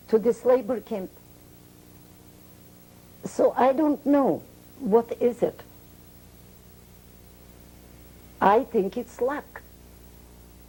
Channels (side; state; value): both; identical; correlation 1.00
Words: to this labor camp. So I don't know, what is it? I think it's luck.